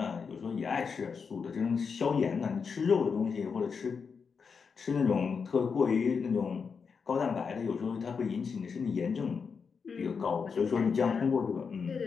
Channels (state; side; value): quieter; right; 5.7 dB